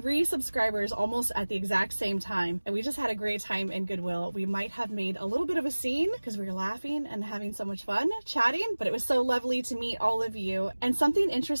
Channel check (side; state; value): both; inverted; correlation -1.00